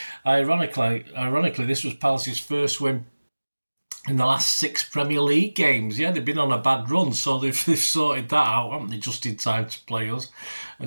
Ironically, this was Palace's first win in the last 6 Premier League games. Yeah, they've been on a bad run, so they've sorted that out, haven't they, just in time to play us.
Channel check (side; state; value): both; inverted; correlation -1.00